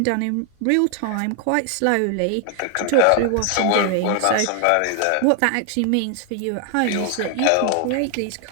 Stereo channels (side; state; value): both; different; correlation 0.00